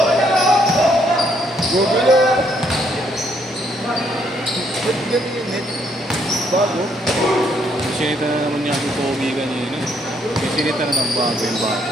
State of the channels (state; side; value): normal; both; correlation 0.71